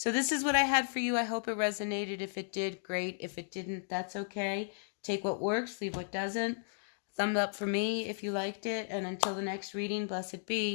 this is what I had for you. I hope it resonated. If it did, great. If it didn't, that's okay. Take what works, leave what doesn't. Thumbs up for me if you liked it. And until the next reading, blessed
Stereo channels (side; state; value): right; silent; digital silence